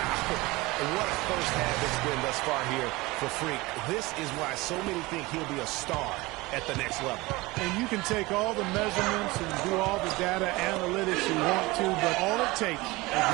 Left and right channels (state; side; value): quieter; left; 21.8 dB